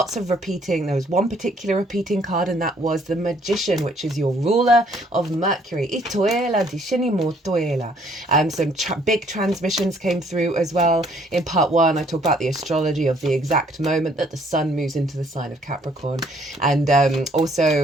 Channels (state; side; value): normal; both; correlation 0.63